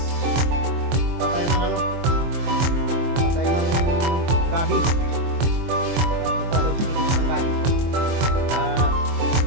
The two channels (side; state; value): left; late; 23 ms